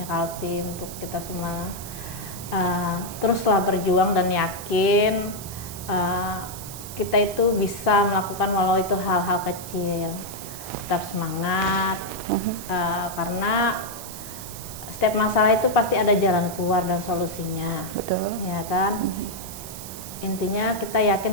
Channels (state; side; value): noise; right; hiss, 12 dB below the sound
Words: Kaltim, untuk kita semua teruslah berjuang dan yakin kita itu bisa melakukan walau itu hal-hal kecil. Tetap semangat karena setiap masalah itu pasti ada jalan keluar dan solusinya. Betul. Ya kan? Intinya kita